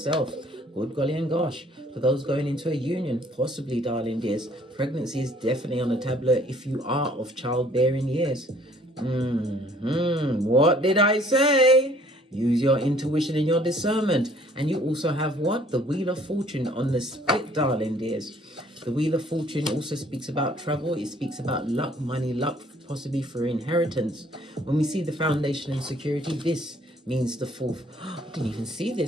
Good golly and gosh. For those going into a union, possibly, darling dears, pregnancy is definitely on the tableau if you are of childbearing years. What did I say? Use your intuition and your discernment. And you also have what? The Wheel of Fortune on the split, darling dears. The Wheel of Fortune also speaks about travel. It speaks about luck, money, luck, possibly for inheritance. When we see the foundation and security, this means the fourth. I didn't even see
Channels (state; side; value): normal; both; correlation 0.58